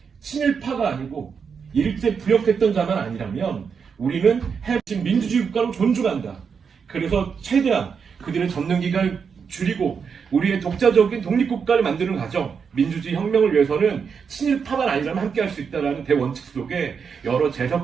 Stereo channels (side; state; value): left; quieter; 6.2 dB